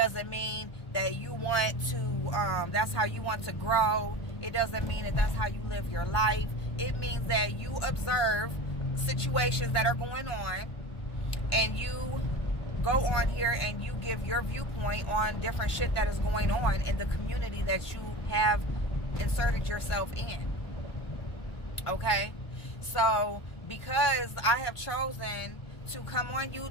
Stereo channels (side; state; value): right; late; 1.4 ms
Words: mean that you want to, that's how you want to grow. It doesn't mean that that's how you live your life. It means that you observe situations that are going on and you go on here and you give your viewpoint on different shit that is going on in the community that you have inserted yourself in. Okay? So, because I have chosen to come on